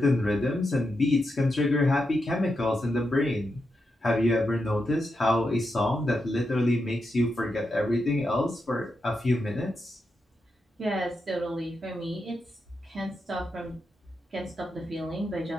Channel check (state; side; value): normal; both; correlation 0.86